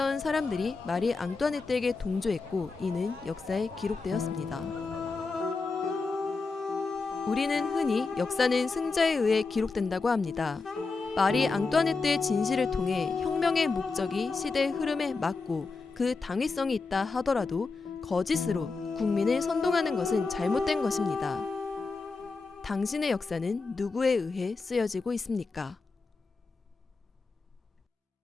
사람들이 마리 앙뚜아네트에게 동조했고 이는 역사에 기록되었습니다. 우리는 흔히 역사는 승자에 의해 기록된다고 합니다. 마리 앙뚜아네트의 진실을 통해 혁명의 목적이 시대의 흐름에 맞고 그 당위성이 있다 하더라도 거짓으로 국민을 선동하는 것은 잘못된 것입니다. 당신의 역사는 누구에 의해 쓰여지고 있습니까?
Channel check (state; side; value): quieter; right; 4.1 dB